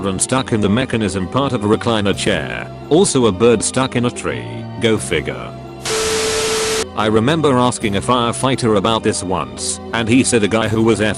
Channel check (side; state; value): both; identical; correlation 1.00